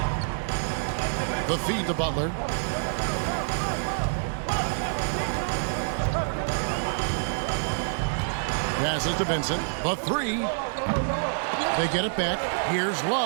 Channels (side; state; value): left; silent; digital silence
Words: The feed to Butler. Passes to Vincent. The 3. They get it back. Here's